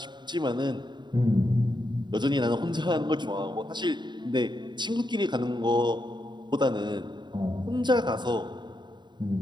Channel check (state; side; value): late; left; 0.22 ms